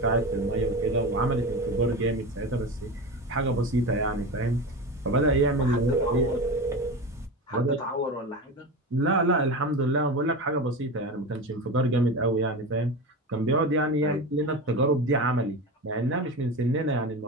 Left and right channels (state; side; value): normal; both; correlation 0.25